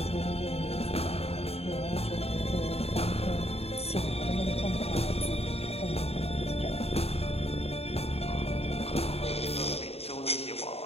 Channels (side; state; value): right; late; 0.29 ms